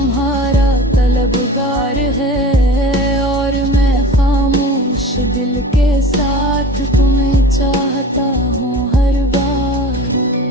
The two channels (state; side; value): normal; both; correlation 0.37